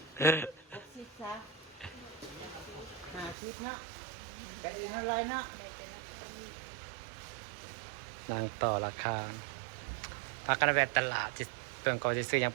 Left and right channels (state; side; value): drops out; left; at 3.4 s